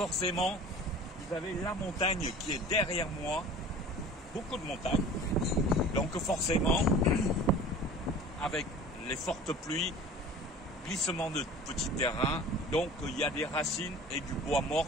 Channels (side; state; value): both; normal; correlation 0.42